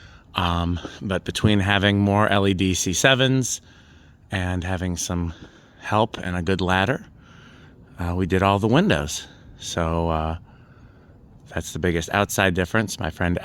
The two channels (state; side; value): identical; both; correlation 1.00